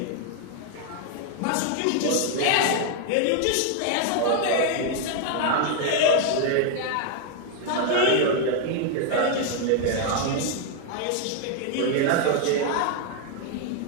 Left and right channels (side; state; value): both; different; correlation 0.00